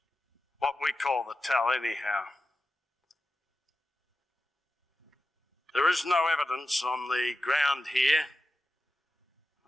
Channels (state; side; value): normal; both; correlation 0.92